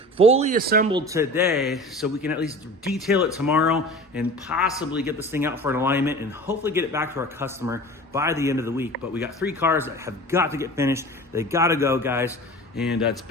fully assembled today so we can at least detail it tomorrow and possibly get this thing out for an alignment and hopefully get it back to our customer by the end of the week. But we got 3 cars that have got to get finished. They got to go, guys. and it's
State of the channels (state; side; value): normal; both; correlation 0.38